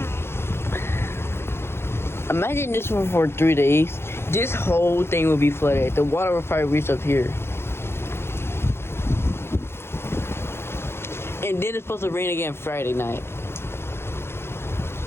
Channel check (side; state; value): right; late; 0.12 ms